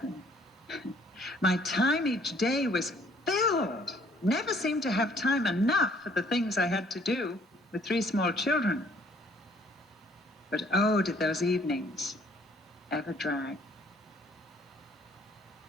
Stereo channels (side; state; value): both; normal; correlation 0.61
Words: My time each day was filled. Never seemed to have time enough for the things I had to do with 3 small children. But oh, did those evenings ever drag.